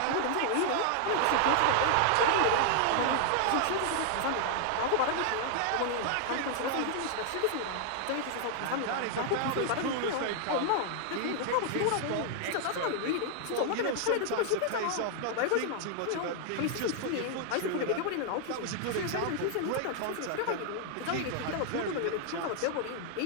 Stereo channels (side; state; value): both; different; correlation 0.00